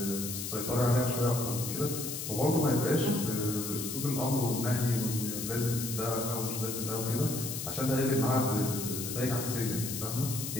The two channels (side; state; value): left; noise; hiss, 5 dB below the sound